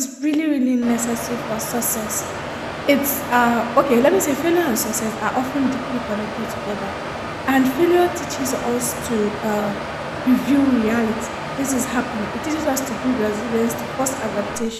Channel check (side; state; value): both; identical; correlation 1.00